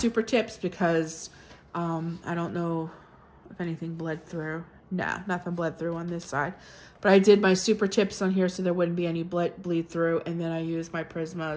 tips because I don't know if anything bled through. Nah, nothing bled through on this side. But I did my super tips on here so there wouldn't be any bleed through. And then I used my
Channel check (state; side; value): identical; both; correlation 1.00